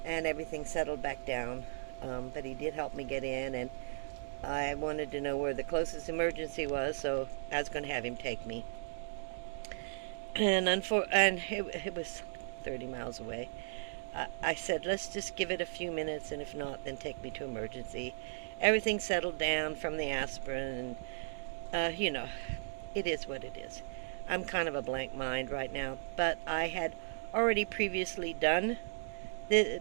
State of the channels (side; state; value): left; silent; digital silence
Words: and everything settled back down. But he did help me get in, and I wanted to know where the closest emergency was, so I was going to have him take me. And it was 30 miles away. I said, let's just give it a few minutes, and if not, then take me to emergency. Everything settled down from the aspirin, and it is what it is. I'm kind of a blank mind right now, but I had already previously done